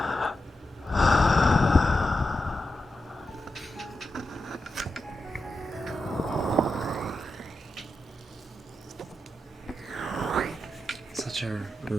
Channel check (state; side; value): normal; both; correlation 0.89